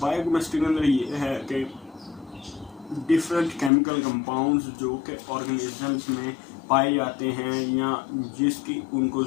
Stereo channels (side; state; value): right; drops out; at 3.7 s